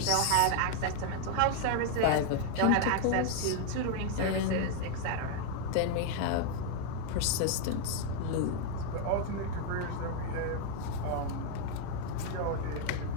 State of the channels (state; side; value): different; both; correlation 0.00